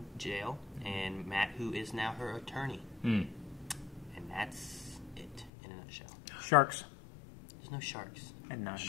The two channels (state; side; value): drops out; right; at 5.5 s